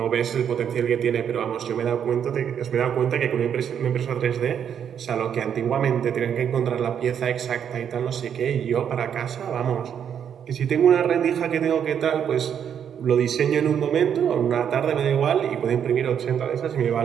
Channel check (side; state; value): left; quieter; 8.4 dB